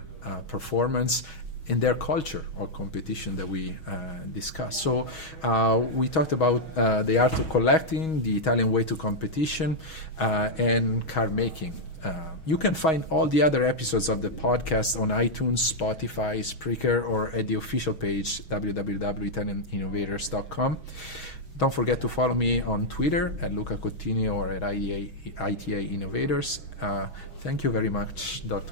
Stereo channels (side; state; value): right; late; 6.3 ms